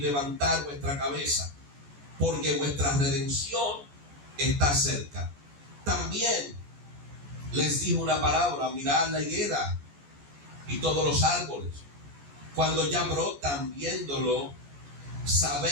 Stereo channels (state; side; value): late; left; 14 ms